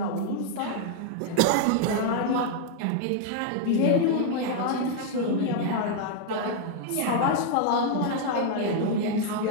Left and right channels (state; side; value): different; both; correlation 0.00